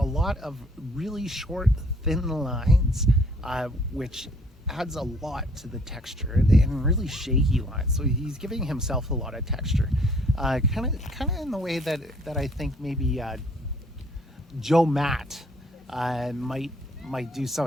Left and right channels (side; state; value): both; normal; correlation 0.61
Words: lot of really short, thin lines, which adds a lot to the texture, and really shaky lines. So he's giving himself a lot of texture, kind of in the way that I think maybe Joe Matt might do